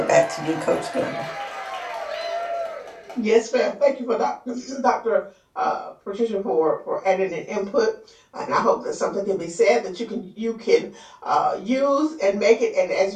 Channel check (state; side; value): identical; both; correlation 1.00